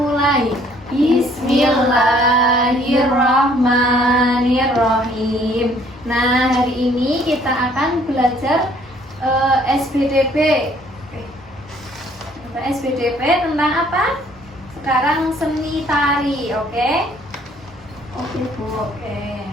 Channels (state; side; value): normal; both; correlation 0.61